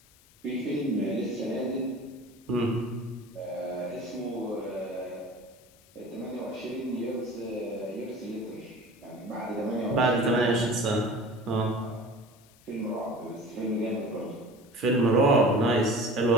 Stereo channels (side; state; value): left; noise; hiss, 28 dB below the sound